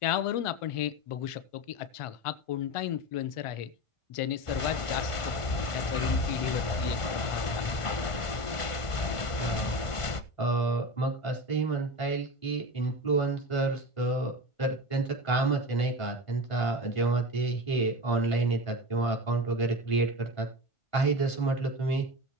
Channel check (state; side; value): late; right; 1.5 ms